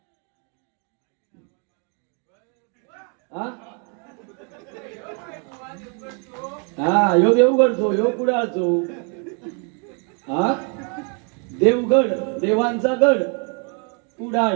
हा यो देवगडचो यो कुडाळचो हा देवगड देवांचा गड कुडाळ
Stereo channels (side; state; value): left; quieter; 37.1 dB